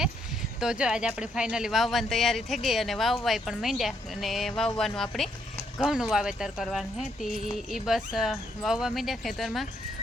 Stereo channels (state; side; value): normal; both; correlation 0.74